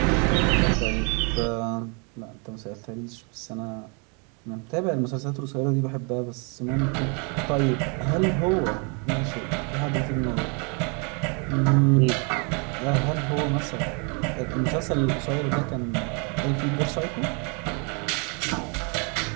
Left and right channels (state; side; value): quieter; left; 34.4 dB